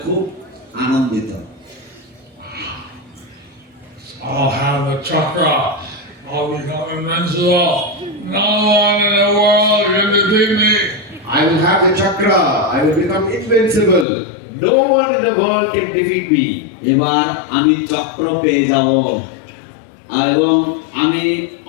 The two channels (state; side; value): drops out; right; at 14.1 s